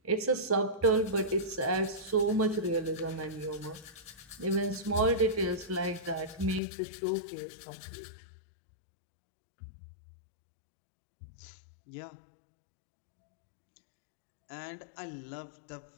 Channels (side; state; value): right; drops out; at 6.6 s